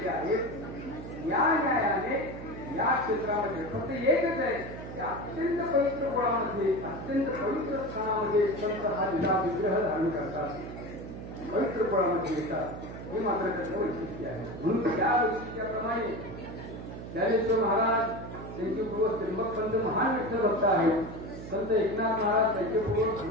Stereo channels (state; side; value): noise; right; hum, 10 dB below the sound